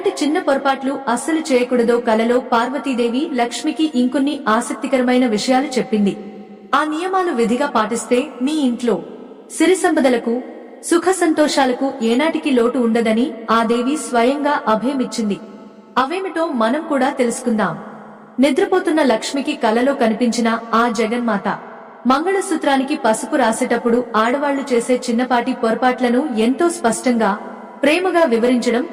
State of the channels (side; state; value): both; identical; correlation 1.00